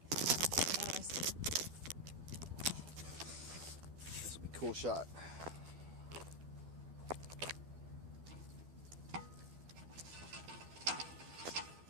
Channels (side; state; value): left; late; 12 ms